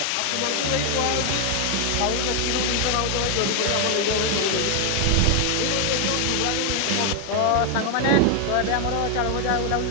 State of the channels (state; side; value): different; both; correlation 0.01